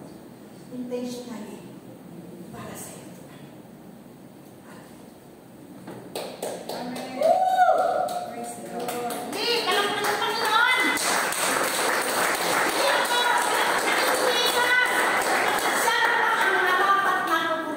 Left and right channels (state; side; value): identical; both; correlation 1.00